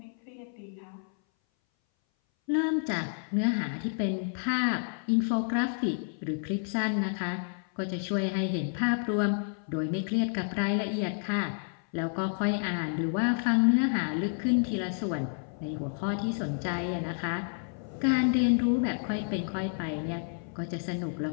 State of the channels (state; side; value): silent; right; 58 dB below the other